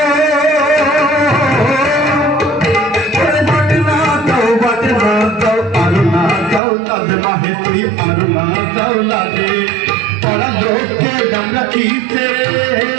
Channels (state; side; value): drops out; left; at 6.6 s